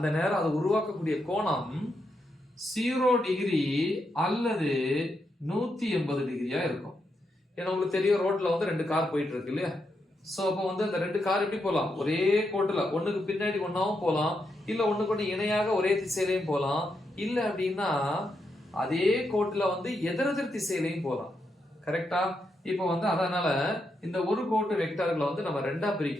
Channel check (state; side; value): normal; both; correlation 0.83